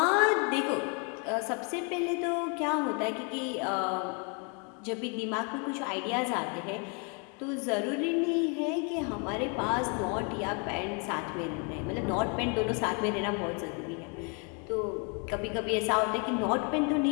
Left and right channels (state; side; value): quieter; right; 35.4 dB